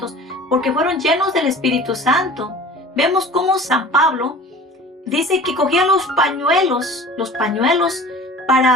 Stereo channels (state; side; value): normal; both; correlation 0.42